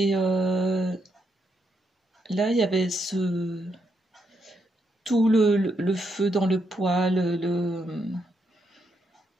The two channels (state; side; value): normal; both; correlation 0.79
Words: là, il y avait tout le feu dans le poêle,